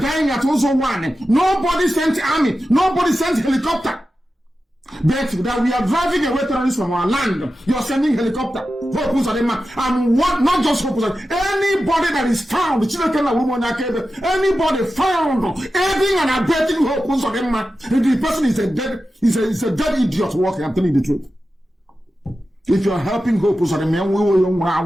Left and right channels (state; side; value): normal; both; correlation 0.92